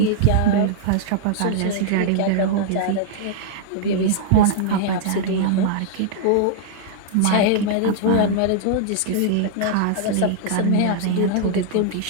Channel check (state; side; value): different; both; correlation -0.01